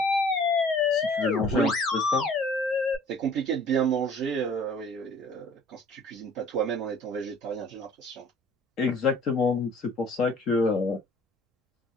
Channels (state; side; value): normal; both; correlation 0.52